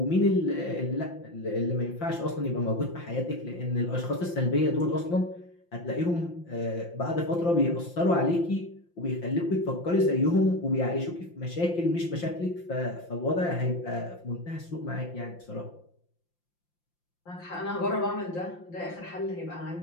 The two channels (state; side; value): late; right; 5.8 ms